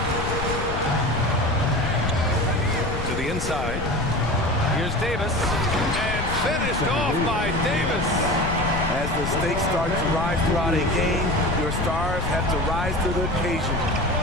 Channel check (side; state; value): left; noise; rumble, 4 dB below the sound